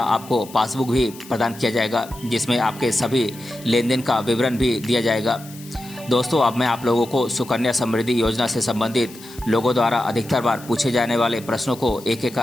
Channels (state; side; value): noise; left; hiss, 19 dB below the sound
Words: पासबुक भी प्रदान किया जाएगा, जिसमें आपके सभी लेन देन का विवरण भी दिया जाएगा। दोस्तों, अब मैं आप लोगों को सुकन्या समृद्धि योजना से संबंधित लोगों द्वारा अधिकतर बार पूछे जाने वाले प्रश्नों को एक एक